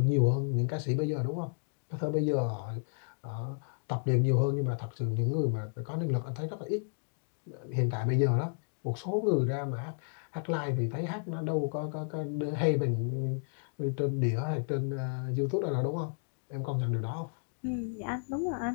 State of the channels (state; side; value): silent; right; digital silence